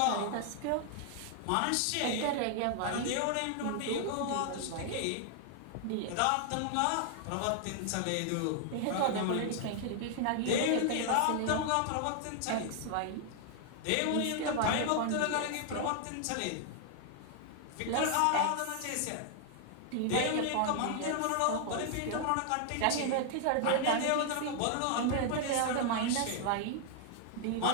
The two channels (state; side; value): different; both; correlation 0.00